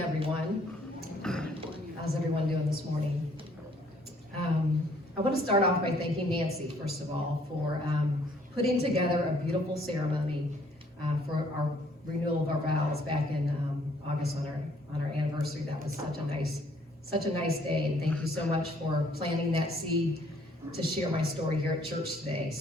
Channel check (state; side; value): normal; both; correlation 0.63